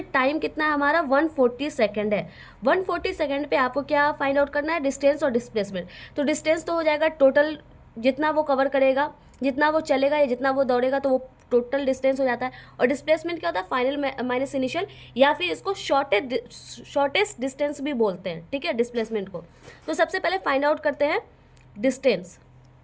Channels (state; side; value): identical; both; correlation 1.00